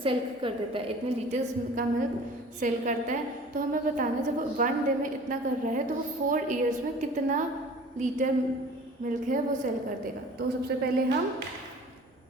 सेल कर देता है, इतने लीटर्स का मिल्क सेल करता है. तो हमें बताना है जब वो 1 डे में इतना कर रहा है तो वो 4 ईयर्स में कितना लीटर मिल्क है वो सेल कर देगा. तो सबसे पहले हम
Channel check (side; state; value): both; normal; correlation 0.45